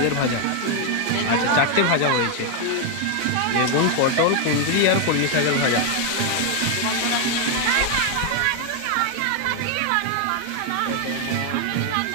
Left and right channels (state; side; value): different; both; correlation 0.01